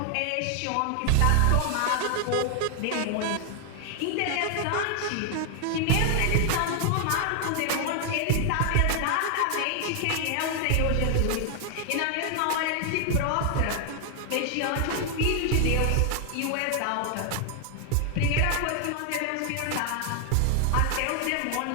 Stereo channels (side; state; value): both; different; correlation 0.00